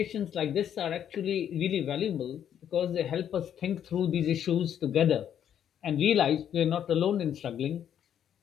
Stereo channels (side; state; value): right; quieter; 9.5 dB